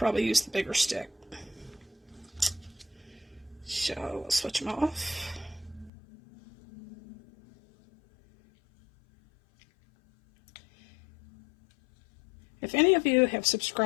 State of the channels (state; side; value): drops out; right; at 5.9 s